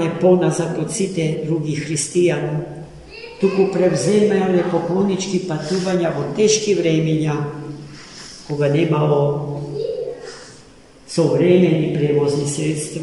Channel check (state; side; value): identical; both; correlation 1.00